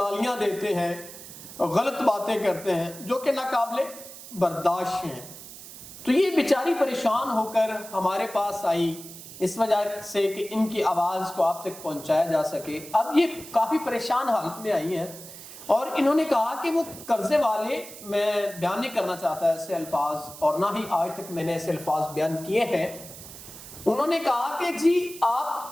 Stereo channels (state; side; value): noise; right; hiss, 15 dB below the sound